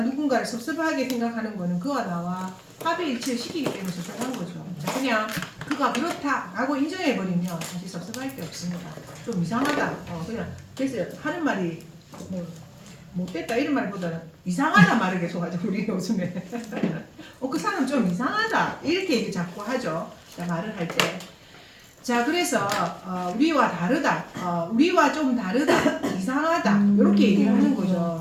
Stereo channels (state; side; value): identical; both; correlation 1.00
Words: 누군가를 섭섭하게 생각하는 거는 그와 나와 합의일치를 시키기 때문에 섭섭한 거죠. 자, 그냥 그가 그렇다라고 인정해버리면 사실 섭섭할 게 없습니다. 좀 이상하다. 그냥 그래서 하는 말이 뭐 못됐다 이런 말보다는 이상하다 말을 계속 하죠. 우리 요즘에. 그 사람 좀 이상하다 이렇게 얘기 자꾸 하죠. 자, 말을 할 때. 자, 그래서 우리와 다르다, 우리와 좀 다르다, 이상하다 이렇게 얘기를 하는